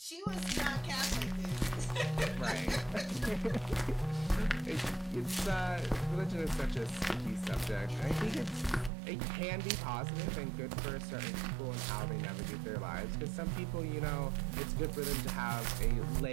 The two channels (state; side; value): drops out; left; at 8.9 s